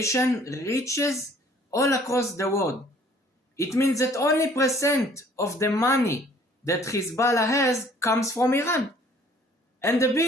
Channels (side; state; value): both; normal; correlation 0.56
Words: reaches all across the world. It means that only percent of the money that Hezbollah has comes from Iran. And the